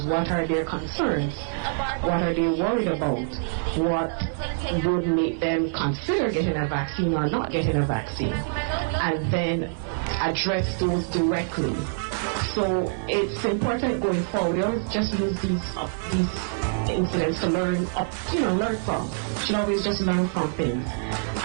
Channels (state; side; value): silent; left; 61 dB below the other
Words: What are their concerns? What are they worried about? What would make them consider getting a vaccine or not getting a vaccine? And then address those directly. So it's important going forward. We always just use these incidents to learn from. You should always just learn from things